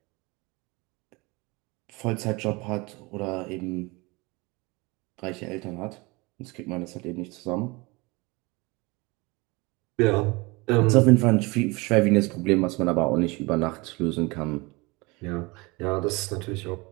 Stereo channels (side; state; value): left; quieter; 25.3 dB